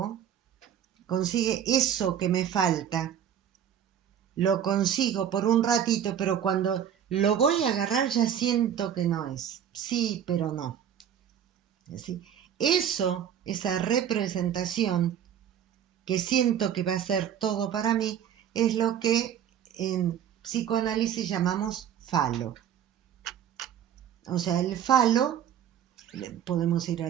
consigue eso que me falta, lo consigo por un ratito, pero cuando lo voy a agarrar ya siento que no es. Sí, pero no. ¿Sí? Eso, esa representación que siento que va a ser todo para mí, es lo que en psicoanálisis llamamos falo. O sea, el falo, podemos ir a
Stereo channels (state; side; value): quieter; left; 9.3 dB